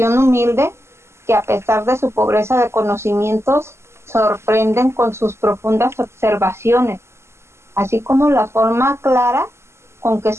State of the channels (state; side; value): late; left; 0.13 ms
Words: humilde, que a pesar de su pobreza de conocimientos, sorprenden con sus profundas observaciones, así como la forma clara con que